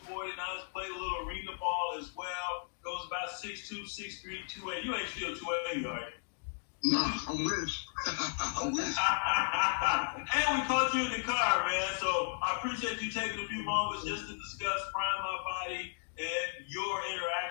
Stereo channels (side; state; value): right; silent; digital silence